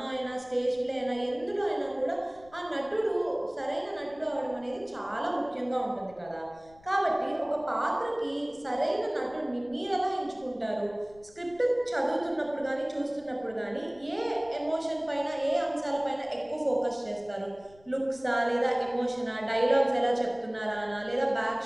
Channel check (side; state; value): left; noise; rumble, 26 dB below the sound